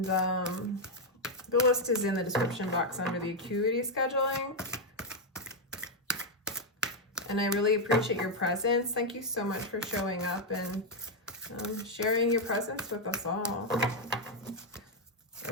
the list is in the description box under the acuity scheduling. And I really appreciate your presence. Thank you so much for showing up and sharing your presence with us all. All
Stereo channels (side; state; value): both; normal; correlation 0.01